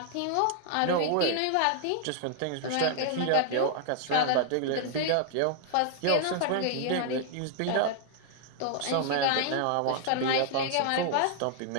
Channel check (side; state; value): both; different; correlation -0.01